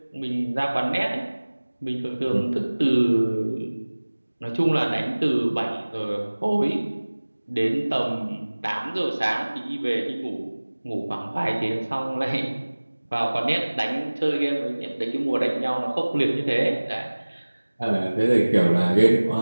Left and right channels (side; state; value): both; inverted; correlation -1.00